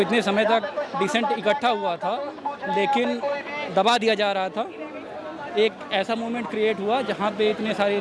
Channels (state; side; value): identical; both; correlation 1.00